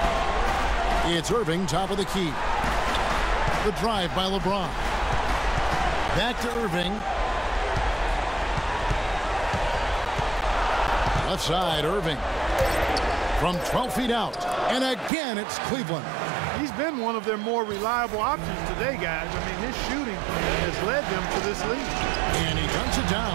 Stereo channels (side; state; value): left; drops out; at 15.1 s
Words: It's Irving, top of the key. The drive by LeBron. Back to Irving. Left side, Irving. From 12 feet out. And again, it's Cleveland. He's been one of their more reliable options today, guys. I mean, his shooting has led them to this lead. And he dunks it